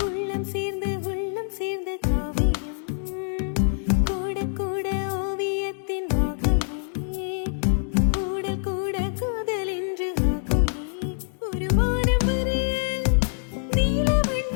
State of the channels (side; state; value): right; silent; digital silence